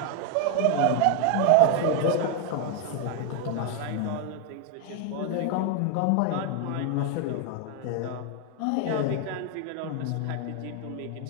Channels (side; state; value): both; different; correlation 0.01